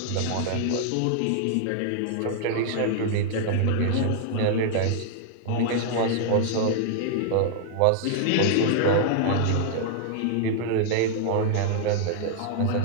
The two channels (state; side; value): different; both; correlation -0.01